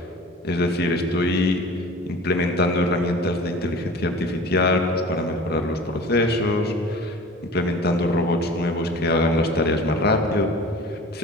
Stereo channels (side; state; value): both; normal; correlation 0.40